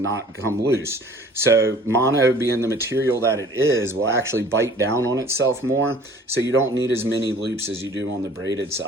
not come loose. So mono, being the material that it is, will actually bite down on itself more, so you don't need as many loops as you do on the braided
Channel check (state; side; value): normal; both; correlation 0.50